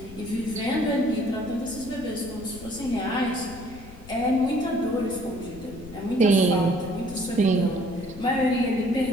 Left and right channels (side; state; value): left; noise; rumble, 17 dB below the sound